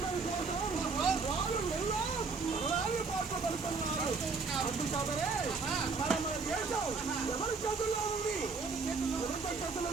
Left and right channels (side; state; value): left; quieter; 4.5 dB